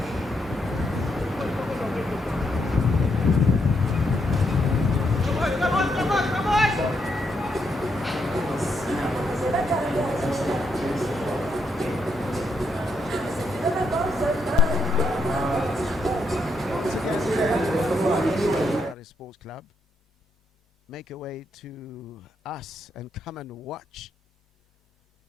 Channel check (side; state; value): both; normal; correlation 0.78